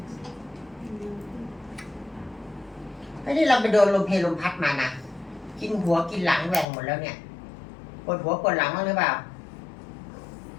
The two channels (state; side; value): drops out; right; at 6.7 s